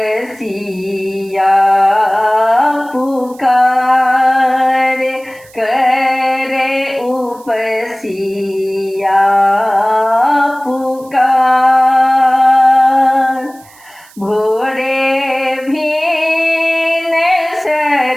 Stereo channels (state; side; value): noise; right; hiss, 26 dB below the sound